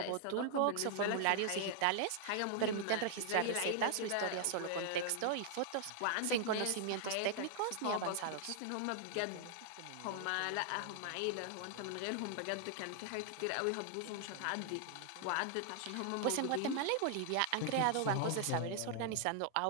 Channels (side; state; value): both; different; correlation 0.00